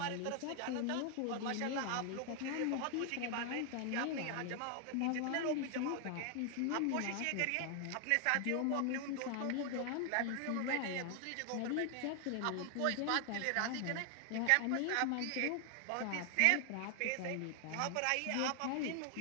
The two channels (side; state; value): both; different; correlation 0.00